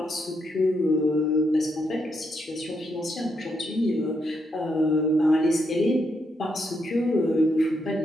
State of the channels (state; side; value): normal; both; correlation 0.79